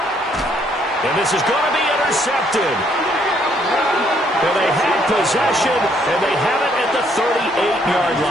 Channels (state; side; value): normal; both; correlation 0.68